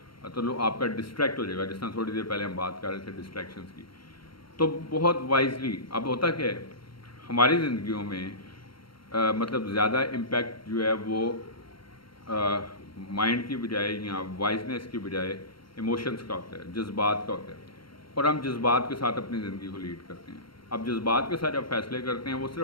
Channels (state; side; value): late; right; 0.73 ms